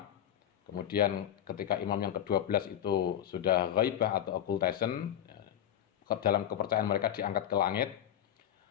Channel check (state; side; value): quieter; right; 10.8 dB